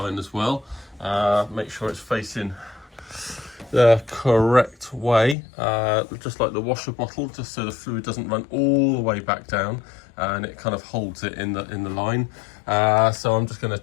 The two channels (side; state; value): right; drops out; at 5.4 s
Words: as well. Make sure it's facing the correct way, just like the washer bottle, just so the fluid doesn't run all the way back down, and it kind of holds it in the line. So I'm just going to